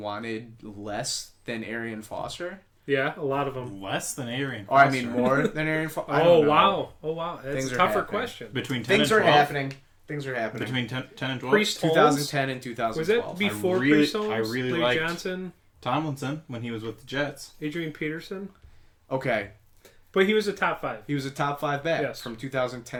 less than Arian Foster? Yeah, a lot of them. Less than Arian Foster. Or I mean, more than Arian Foster. Oh wow! That's Things a are tougher happening. question. Between 10 Things and are 12? happening. Things are happening. Between 10 and 12? Priest 2010 and 2012. Was that before Priest Holmes? I really Larry liked Johnson, Tomlinson when he was with the Jets. Adrian Peterson. Okay. But he was a top 5. He was a top 5 back Yes. from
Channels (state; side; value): identical; both; correlation 1.00